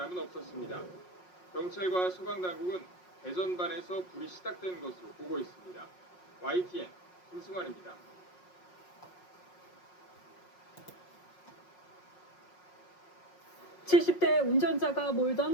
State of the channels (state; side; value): late; right; 5.5 ms